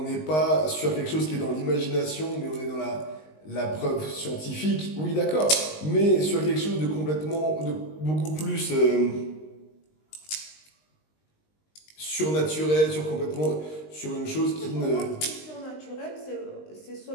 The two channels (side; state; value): right; late; 19 ms